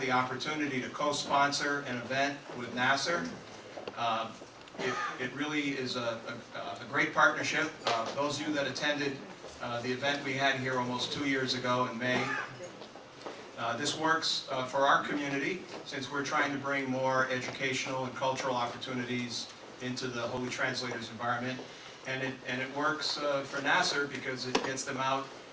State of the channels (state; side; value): identical; both; correlation 1.00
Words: opportunity to co-sponsor an event with NAASR. It really is a great partnership. Those of you that attended the event we had here almost 2 years ago in May, this works for our community since we're trying to bring more educational and cultural opportunities into the Holy Translators environment, and it works for NAASR because it gets them out